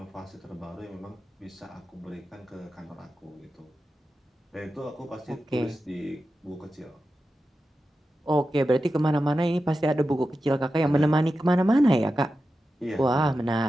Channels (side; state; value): both; normal; correlation 0.92